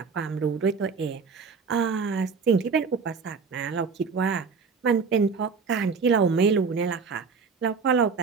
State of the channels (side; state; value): left; quieter; 5.3 dB